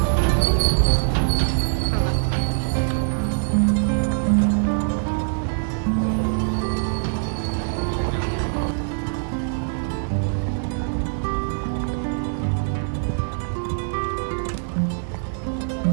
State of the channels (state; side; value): silent; left; digital silence